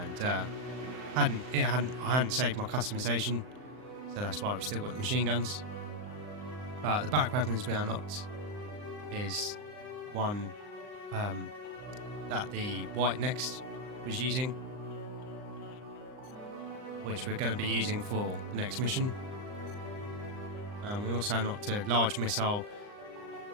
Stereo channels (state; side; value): late; left; 39 ms